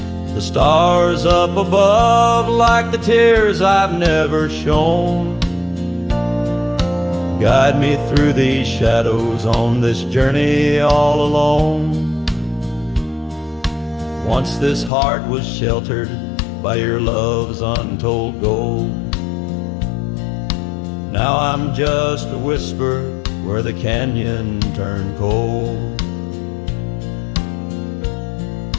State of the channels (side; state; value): right; drops out; at 14.9 s